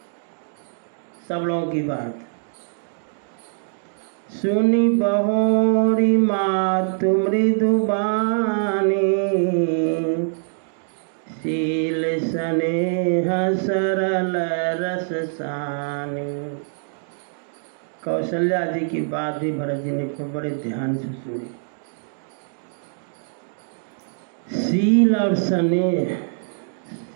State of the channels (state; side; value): silent; left; digital silence